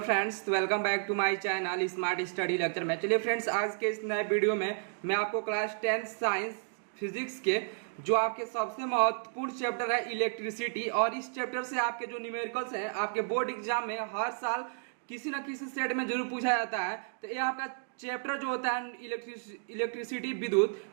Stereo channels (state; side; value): silent; left; digital silence